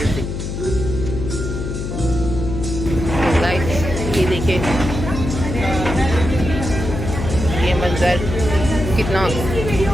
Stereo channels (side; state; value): left; noise; hum, 5 dB below the sound